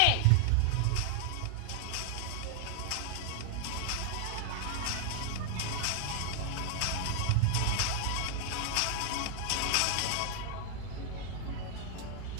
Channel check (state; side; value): different; both; correlation 0.00